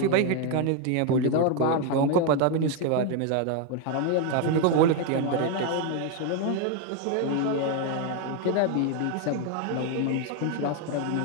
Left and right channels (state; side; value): different; both; correlation 0.01